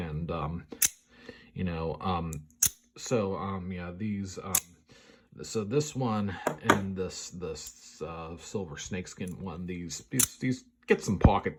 yeah, these so this one and this silver snakeskin one, these get some pocket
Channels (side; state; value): both; identical; correlation 1.00